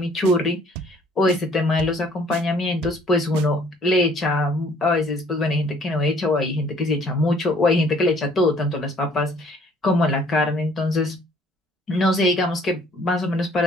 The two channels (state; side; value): normal; both; correlation 0.59